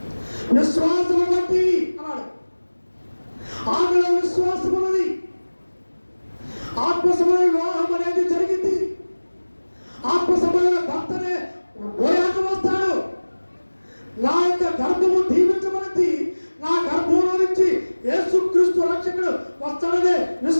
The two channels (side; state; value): both; inverted; correlation -1.00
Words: విశ్వాసం బట్టి అన్నాడు. ఆమెలో విశ్వాసం ఉన్నది. ఆత్మసమైన వివాహం అనేది జరిగింది. ఆత్మసమైన భర్తనే పోయాక వస్తాడు. నా యొక్క గర్భము దీవించబడింది, నా గర్భంలో నుంచి యేసుక్రీస్తు రక్షకుడు వస్తాడనే